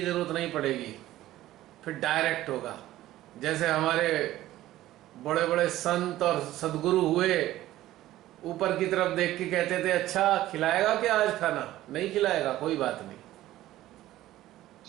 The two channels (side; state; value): left; quieter; 14.9 dB